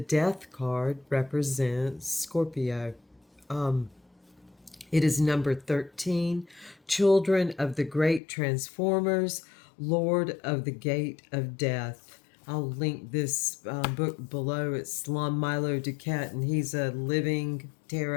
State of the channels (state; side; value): drops out; right; at 8.2 s